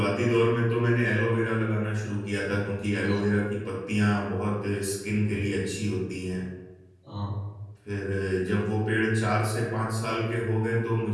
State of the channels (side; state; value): both; identical; correlation 1.00